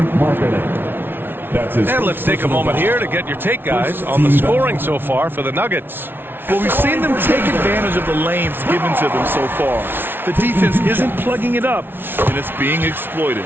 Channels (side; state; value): left; late; 0.10 ms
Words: And let's take a moment here to get your take, guys, on the scoring so far for the Nuggets. Well, we've seen them take advantage of the lanes given to them so far. The defense isn't plugging it up, and it's being exploited.